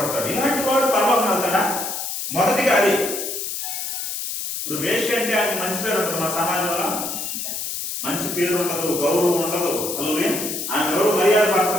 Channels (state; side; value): noise; left; hiss, 4 dB below the sound